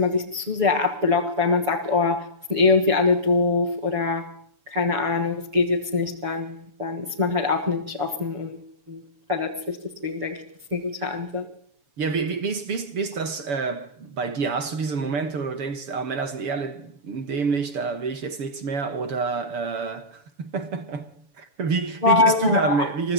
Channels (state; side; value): late; left; 7.0 ms